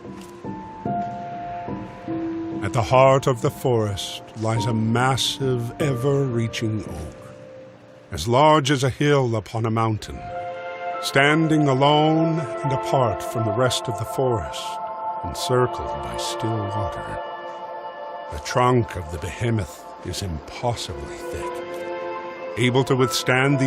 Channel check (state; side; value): identical; both; correlation 1.00